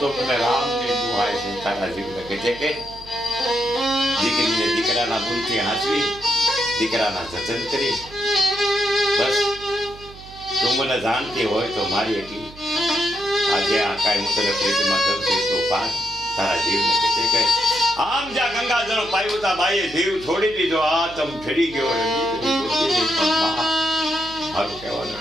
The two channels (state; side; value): noise; right; hum, 19 dB below the sound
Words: મને રામની દુહાય છે. તારા જીવને કહે છે કે દીકરીને દીકરાના ગુણથી હાંસવી, દીકરાના જતન કરી, બસ તું મને જાણતી હોય તો મારી એટલી આજે આ કાંઈ હું તને પ્રીતિમાં દઉં છું તો પાર. તારા જીવને કહે છે કે આમ જ્યાં ગંગાજળ પાયું તા બાઈએ જીવ છોડી દીધો. આ તમ ફરી ગયો મારું